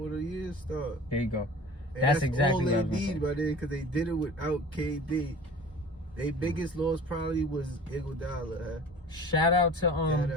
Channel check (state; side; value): normal; both; correlation 0.41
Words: year start. There you go. And That's exactly all what I they was gonna need say. by then because they did it without KD. Their biggest loss probably was Iguodala. Shout out to